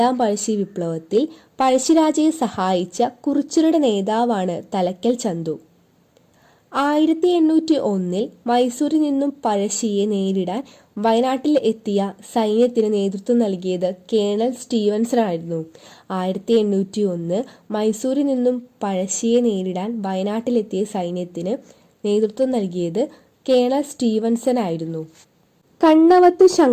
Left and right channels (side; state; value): both; identical; correlation 1.00